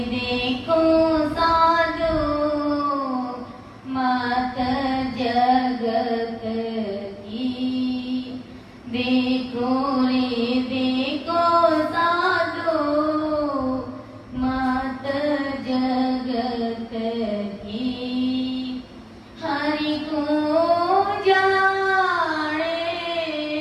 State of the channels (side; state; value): both; identical; correlation 1.00